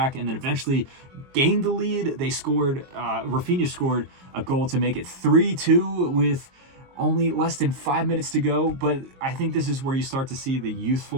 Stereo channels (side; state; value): left; late; 22 ms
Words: and then eventually gained the lead. They scored, Rafinha scored a goal to make it 3-2 with only less than 5 minutes to go. But I think this is where you start to see the